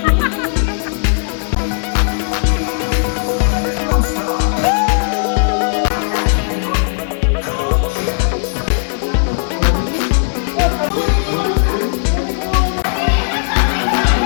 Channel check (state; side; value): silent; right; digital silence